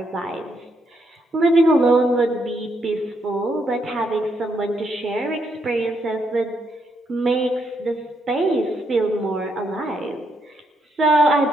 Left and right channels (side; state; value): both; normal; correlation 0.77